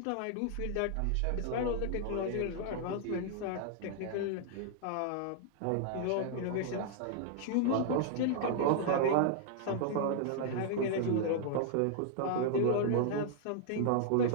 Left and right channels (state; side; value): different; both; correlation -0.01